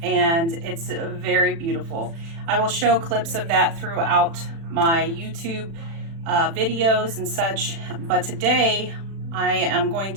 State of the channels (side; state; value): left; late; 36 ms